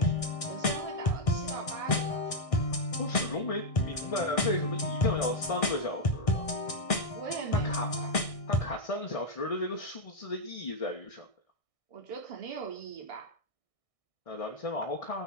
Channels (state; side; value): late; right; 1.6 ms